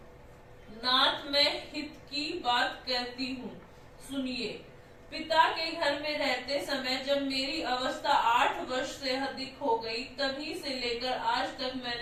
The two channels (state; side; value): identical; both; correlation 1.00